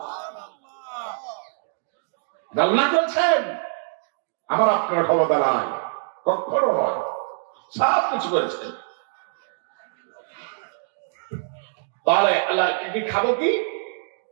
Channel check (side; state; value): left; silent; digital silence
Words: আল্লাহ করেছেন, আমার আপনার ক্ষমতা নাই, কখনো নয়, সব কিছু করেছেন। তাহলে আল্লাহ কি খাবো কি?